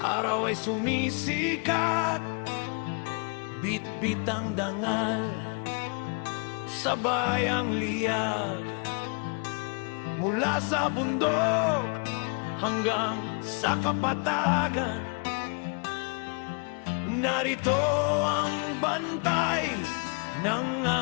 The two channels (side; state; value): right; quieter; 37.9 dB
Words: ay sumisikat, bit-bit ang dangal, sabay ang liyag. Mula sa bundok hanggang sa kapatagan, narito ang bantay ng